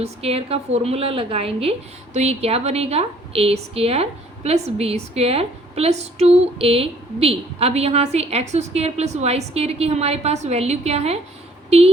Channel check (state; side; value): normal; both; correlation 0.59